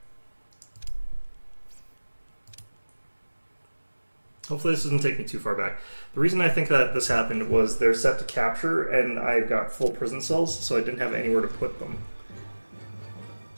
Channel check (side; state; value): both; inverted; correlation -1.00